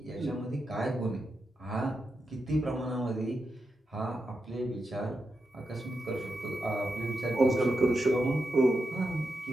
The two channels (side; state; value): both; normal; correlation 0.86